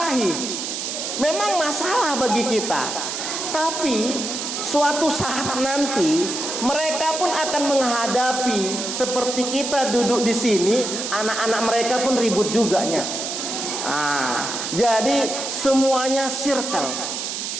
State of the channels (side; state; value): right; noise; hiss, 4 dB below the sound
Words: Memang masalah bagi kita. Tapi suatu saat nanti mereka pun akan menghadapi seperti kita duduk di sini, anak-anak mereka pun ribut juganya. Jadi semuanya circle,